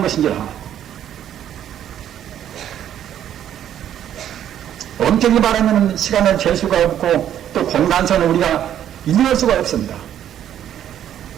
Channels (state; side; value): quieter; left; 10.6 dB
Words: 것인지라 엄격히 말하면 시간을 잴 수가 없고 또 공간선을 우리가 인정할 수가 없습니다.